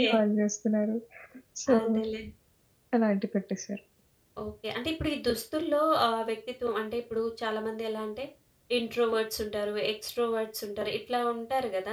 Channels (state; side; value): identical; both; correlation 1.00